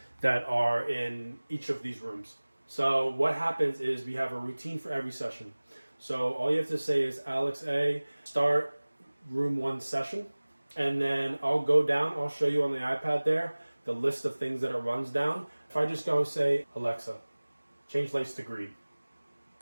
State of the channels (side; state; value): both; inverted; correlation -1.00